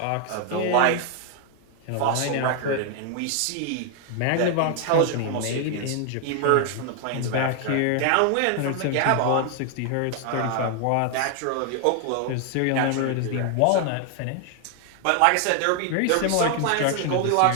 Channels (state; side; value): different; both; correlation 0.00